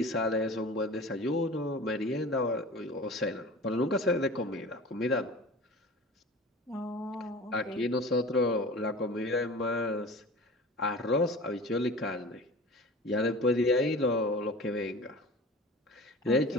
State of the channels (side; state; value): both; normal; correlation 0.38